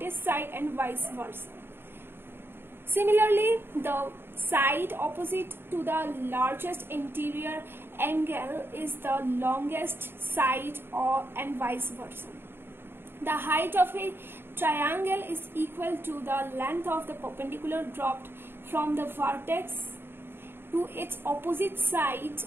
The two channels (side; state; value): left; late; 0.11 ms